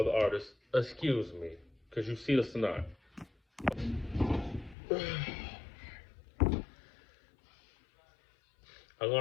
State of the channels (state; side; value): drops out; right; at 4.8 s